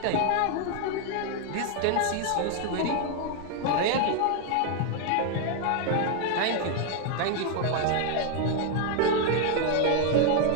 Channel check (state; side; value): different; both; correlation 0.00